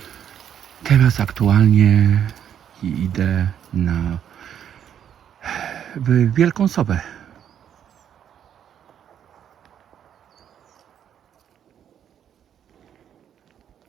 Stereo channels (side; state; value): left; quieter; 9.2 dB